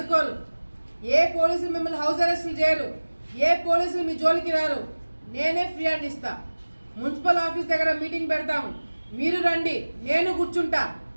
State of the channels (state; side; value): inverted; both; correlation -1.00